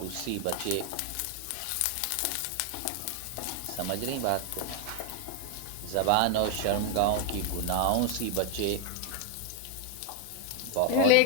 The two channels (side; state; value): both; different; correlation 0.00